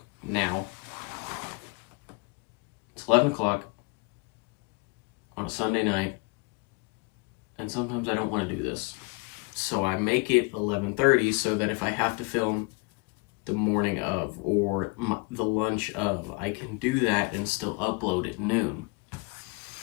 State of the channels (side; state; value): right; quieter; 29.2 dB